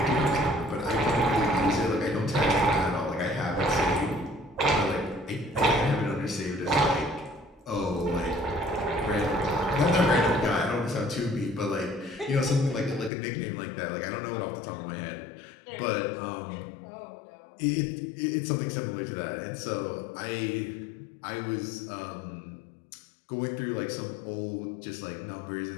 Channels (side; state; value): right; drops out; at 13.1 s